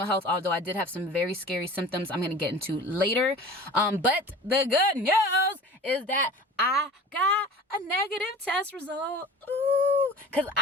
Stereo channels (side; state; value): both; normal; correlation 0.40